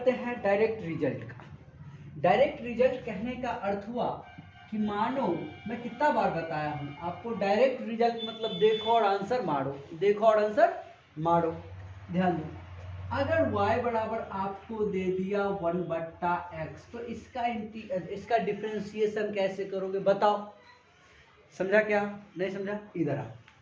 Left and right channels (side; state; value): both; identical; correlation 1.00